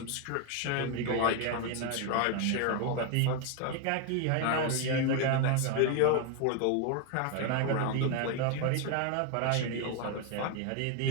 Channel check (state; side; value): different; both; correlation 0.01